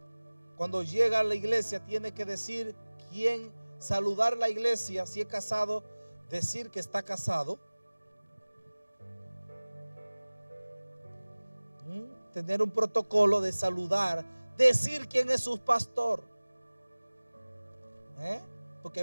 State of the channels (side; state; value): both; inverted; correlation -1.00